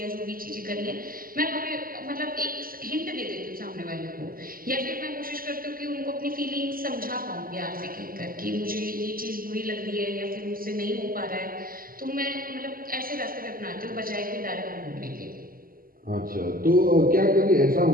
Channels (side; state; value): left; late; 0.42 ms